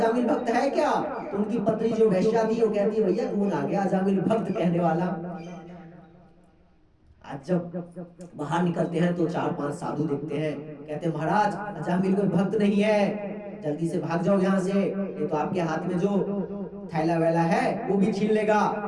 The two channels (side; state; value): both; identical; correlation 1.00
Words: भक्त है क्या। तो उनकी पत्नी जो वैश्या थी वो कहती है भैया कौन आ गया अजामिल भक्त कहने वाला। आज जब बाहर निकलते हैं तो 4-5 साधु देखते हैं, कहते हैं महाराज अजामिल कोई भक्त नहीं है, जल्दी से भाग जाओ यहाँ से, ये तो आपके हाथ में जो थैला वैला है वो भी छीन लेगा।